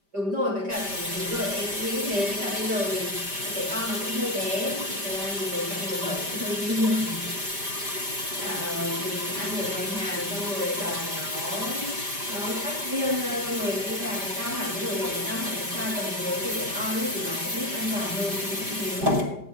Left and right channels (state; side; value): late; left; 5.0 ms